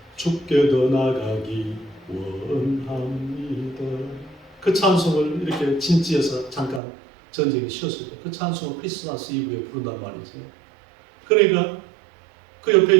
주께 더 나가기 원합니다. 그 찬송을 이렇게 진지해서 잠깐 전쟁이 쉬었을 때 그 찬송을 크리스마스 이브에 부른단 말이죠. 그러니까 그 옆에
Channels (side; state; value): left; drops out; at 6.8 s